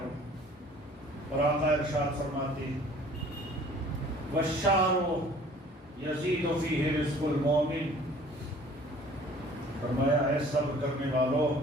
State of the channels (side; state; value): both; normal; correlation 0.51